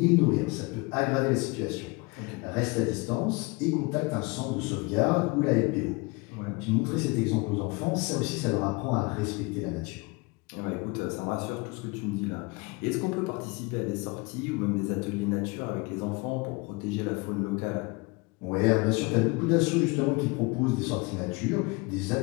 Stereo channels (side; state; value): right; quieter; 26.7 dB